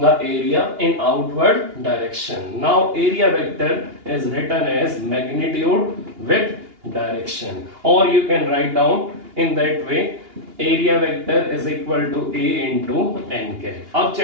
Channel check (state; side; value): late; left; 2.8 ms